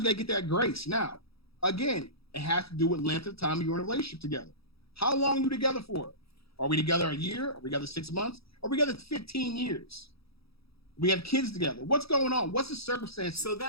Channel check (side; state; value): right; late; 0.77 ms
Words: gotta get that grace. Now, again, it has to do with length of time you're in a relationship together. How long are you together for? Are we together a year? Are we together 6 months? Are we together 15 years? We have kids together. What's going on? What's the circumstance? So